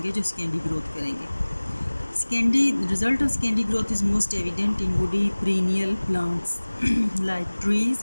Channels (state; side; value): inverted; both; correlation -1.00